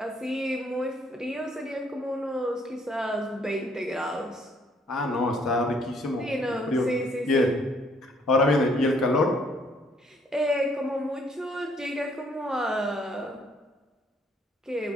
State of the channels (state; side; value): normal; both; correlation 0.66